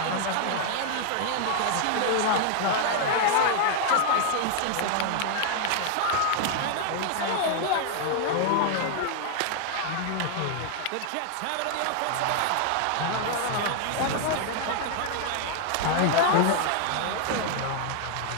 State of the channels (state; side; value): different; both; correlation 0.00